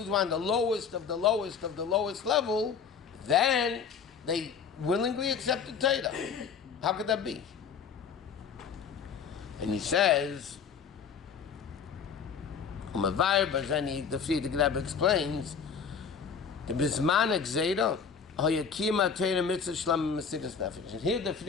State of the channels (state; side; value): quieter; right; 6.4 dB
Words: were on the lowest of the lowest of the lowest level. Then they willingly accepted Torah. How could that be? And he says, the Rebbe explains, the Bisman Gzeira, Hayakima Torah Mitzvah Shlam Mesiras Nefesh. And here the